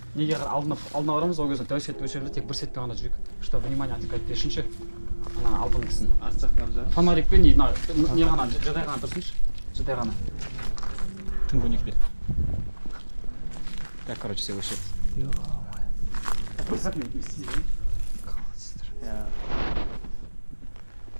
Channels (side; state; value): both; inverted; correlation -1.00